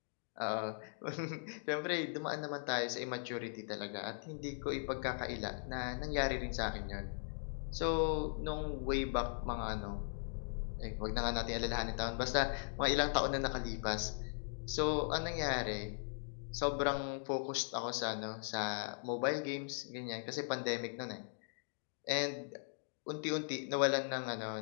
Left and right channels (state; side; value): silent; right; digital silence